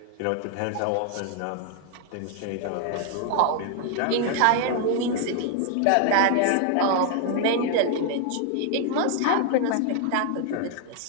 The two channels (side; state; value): both; different; correlation 0.00